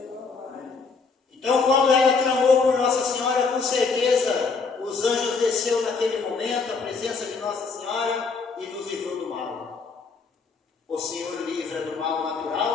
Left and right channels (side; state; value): right; quieter; 4.7 dB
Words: Então, quando ela clamou por Nossa Senhora, com certeza os anjos desceu naquele momento, a presença de Nossa Senhora, e nos livrou do mal. O Senhor livra do mal